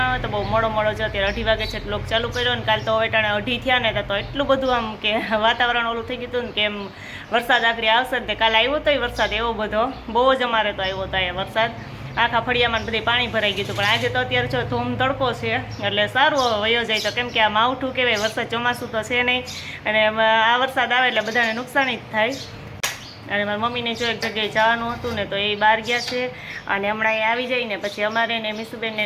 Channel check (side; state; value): both; identical; correlation 1.00